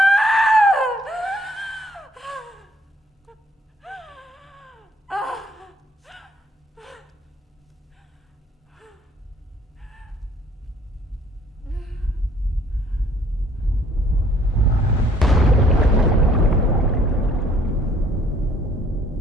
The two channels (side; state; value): both; normal; correlation 0.61